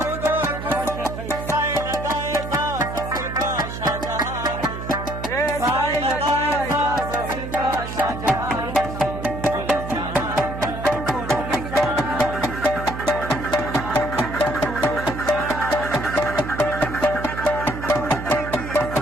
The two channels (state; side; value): noise; right; hum, 7 dB below the sound